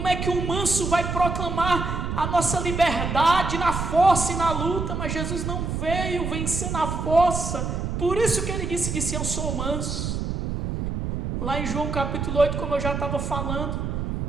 é que um manso vai proclamar a nossa liberdade na força e na luta? Mas Jesus não veio vencer na força. Por isso que ele disse: eu sou manso. Lá em João capítulo 8, como eu já estava falando,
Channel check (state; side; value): noise; right; rumble, 3 dB below the sound